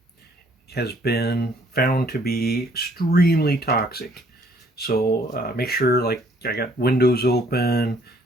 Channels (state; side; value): normal; both; correlation 0.63